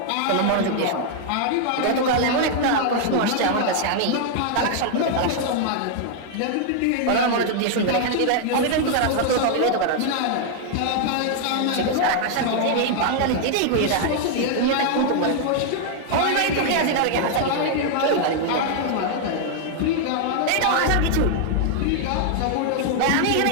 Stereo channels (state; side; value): different; both; correlation 0.00